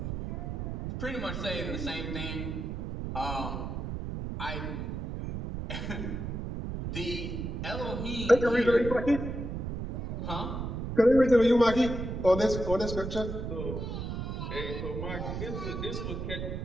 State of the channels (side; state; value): right; noise; rumble, 5 dB below the sound